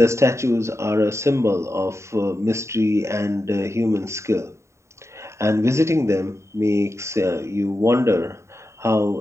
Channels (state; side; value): late; left; 0.14 ms